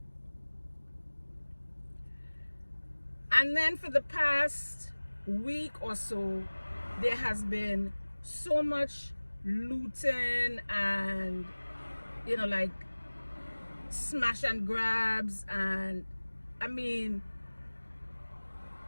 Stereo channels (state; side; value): inverted; both; correlation -1.00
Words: And then for the past week or so, there has been so much looting and like smash and grabs, and I mean,